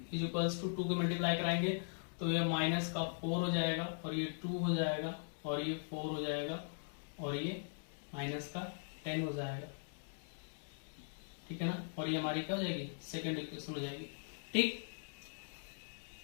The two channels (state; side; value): silent; right; digital silence